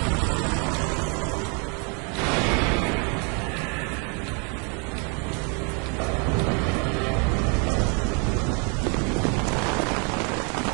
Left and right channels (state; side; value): quieter; left; 35.8 dB